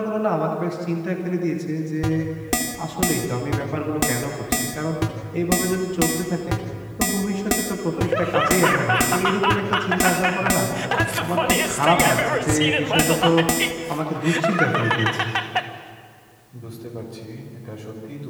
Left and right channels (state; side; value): identical; both; correlation 1.00